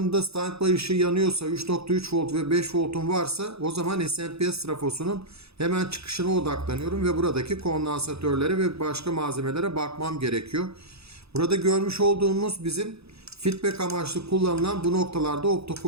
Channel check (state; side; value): late; left; 0.78 ms